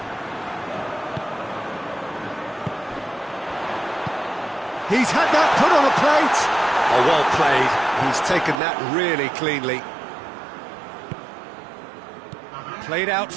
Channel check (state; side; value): drops out; left; at 8.6 s